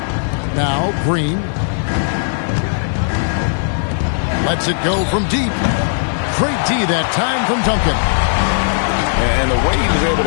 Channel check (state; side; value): silent; right; 68 dB below the other